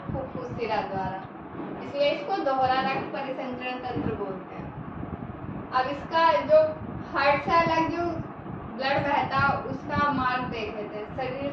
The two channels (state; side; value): identical; both; correlation 1.00